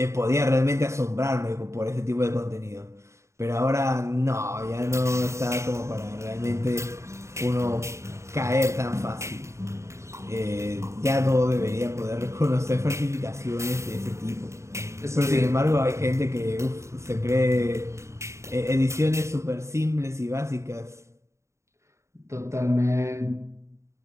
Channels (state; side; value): late; left; 0.14 ms